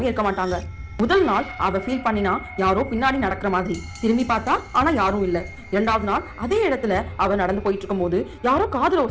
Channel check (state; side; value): identical; both; correlation 1.00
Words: இருக்க மாட்டாங்க. முதல் நாள் அவ ஃபீல் பண்ணினா யாரோ பின்னாடி நடக்கிற மாதிரி. திரும்பி பார்த்தா ஆனா யாரும் இல்ல. இரண்டாவது நாள் அதே இடத்துல அவ நடந்து போயிட்டு இருக்கும் போது யாரோ காதுல